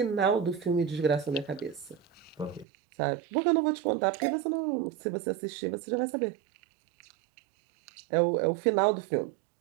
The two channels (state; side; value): drops out; left; at 2.7 s